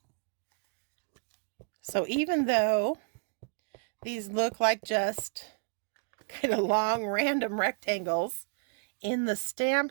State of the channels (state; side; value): quieter; left; 40.0 dB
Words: So even though these look like just kind of long random rectangles in the stamp